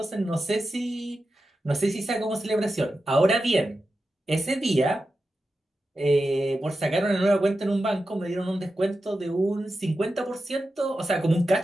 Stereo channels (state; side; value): normal; both; correlation 0.91